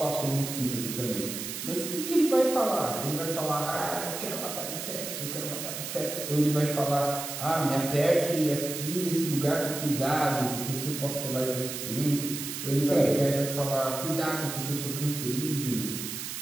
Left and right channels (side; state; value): right; noise; hiss, 6 dB below the sound